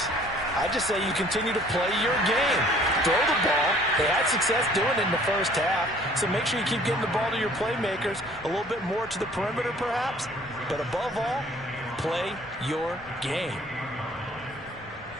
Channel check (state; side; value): normal; both; correlation 0.55